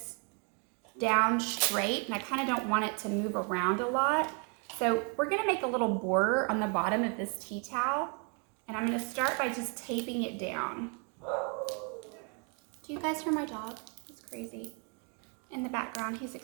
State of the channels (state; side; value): quieter; left; 37.5 dB